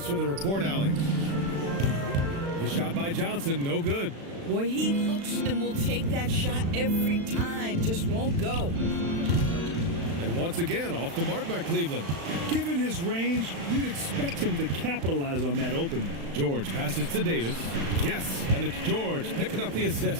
for the report, Allie. The shot by Johnson, no good. Boy, he looks and will take that shot every time. Just won't go. And once again, off the mark by Cleveland. Given his range, you'd expect him to capitalize on that opening. George passes to Davis. Yes, and it's George picking up the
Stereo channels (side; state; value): left; late; 36 ms